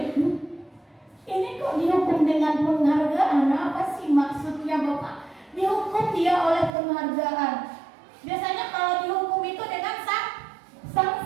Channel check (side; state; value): left; drops out; at 6.7 s